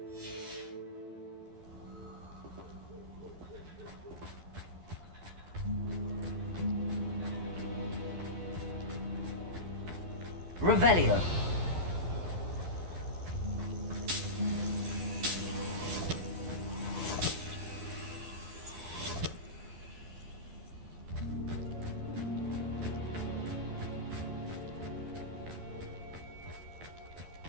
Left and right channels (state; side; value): late; left; 12 ms